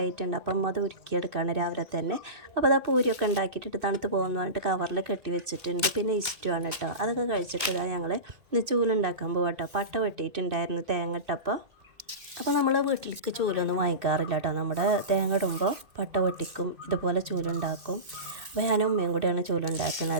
അപ്പം അത് ഉരുക്കിയെടുക്കുകയാണ് രാവിലെ തന്നെ. അപ്പോൾ അതാ പൂരിയൊക്കെ ഉണ്ടാക്കിയിട്ട് തണുത്ത് പോകുമെന്ന് പറഞ്ഞിട്ട് കവറിൽ കെട്ടി വെച്ചിട്ടുണ്ട്. പിന്നെ ഇഷ്ടമാണ് കേട്ടോ. അതൊക്കെ കഴിച്ചിട്ട് ഞങ്ങൾ ഇന്ന് ചൂലുണ്ടാക്കാൻ പോകാം കേട്ടോ. പട്ട വെട്ടിയിട്ടുണ്ടായിരുന്നു തേങ്ങ ഇട്ടപ്പോൾ. അപ്പോൾ നമ്മൾ വീട്ടിലേക്ക് ചൂലൊന്നും വാങ്ങിക്കാറില്ല കേട്ടോ. നമ്മുടെ തേങ്ങ ഇടുമ്പോൾ പട്ട വെട്ടിക്കും, ഇതുപോലെ ചൂലുണ്ടാക്കും. അപ്പോൾ ഞാനും ഉമ്മയും കൂടെയാണ്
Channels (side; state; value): left; late; 2.2 ms